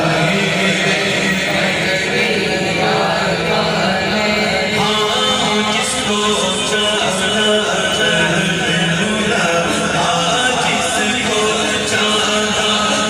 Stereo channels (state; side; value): identical; both; correlation 1.00